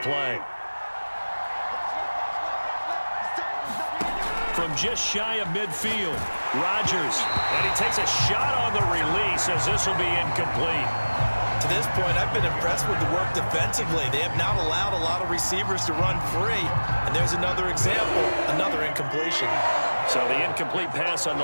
play. From just shy of midfield, Rodgers, and he takes a shot on the release as this will be incomplete. To this point, I've been impressed with the work defensively. They have not allowed a lot of receivers to run free, and there's another example, another incompletion. So the incomplete pass on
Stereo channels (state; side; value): inverted; both; correlation -1.00